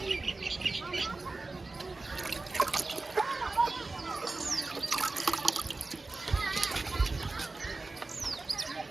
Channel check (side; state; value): left; quieter; 3.4 dB